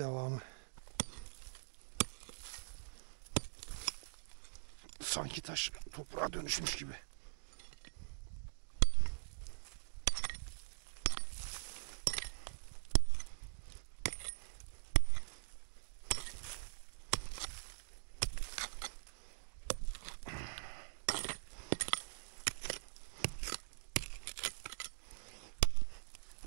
Sanki taş toprağa dönüşmüş gibi.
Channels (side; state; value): left; silent; digital silence